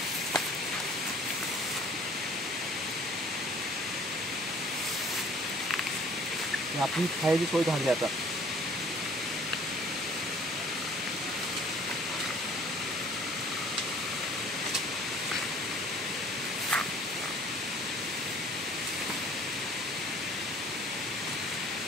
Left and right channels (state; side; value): normal; both; correlation 0.53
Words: आपली खायची सोय झाली आता.